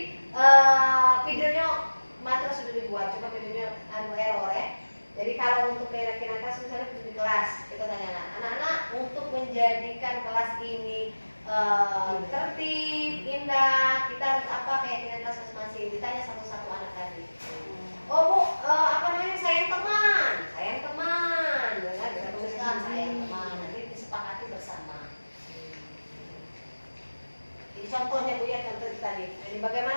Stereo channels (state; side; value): inverted; both; correlation -1.00